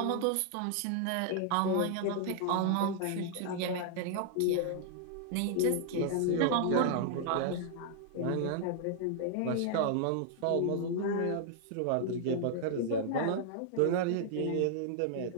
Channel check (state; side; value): different; both; correlation -0.01